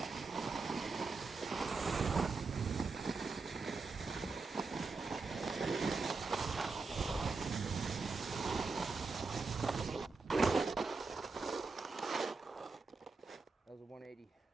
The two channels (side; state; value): left; quieter; 4.2 dB